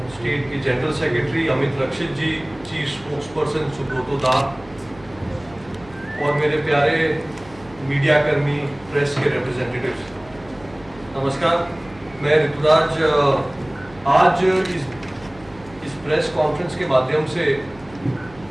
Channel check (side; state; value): right; noise; hum, 22 dB below the sound